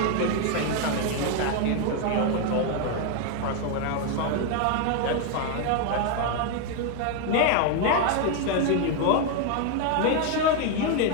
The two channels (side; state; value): both; different; correlation 0.01